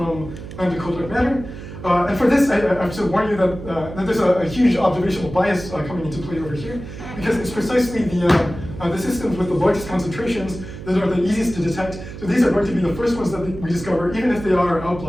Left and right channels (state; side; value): noise; right; hum, 12 dB below the sound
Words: the cold dark matter? And for this, I have to warn you that there's a huge observational bias coming into play over here, because it's precisely the systems with the largest concentrations that are the easiest to detect. So these are going to be the first ones that we discover, even if they are